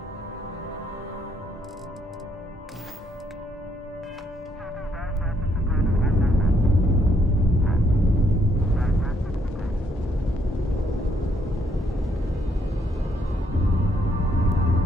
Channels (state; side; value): normal; both; correlation 0.71